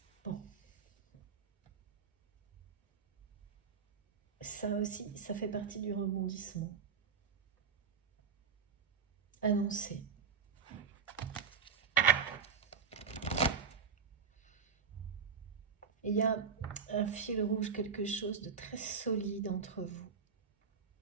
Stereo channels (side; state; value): left; quieter; 6.1 dB